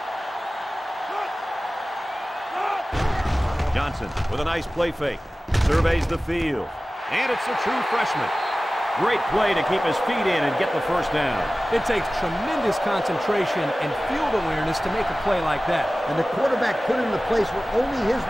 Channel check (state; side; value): normal; both; correlation 0.97